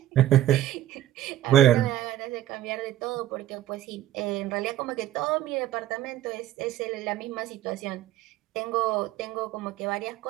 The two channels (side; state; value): left; quieter; 13.1 dB